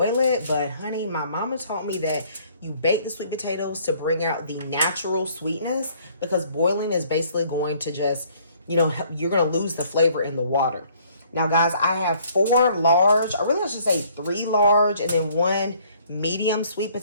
it, but honey, my mama taught me that you bake the sweet potatoes to bring out the natural sweetness, because boiling is basically going to just, you're going to lose the flavor in the water. Now, guys, I have 4 large, or really I should say 3 large, and then 1 medium sweet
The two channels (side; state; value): both; inverted; correlation -0.61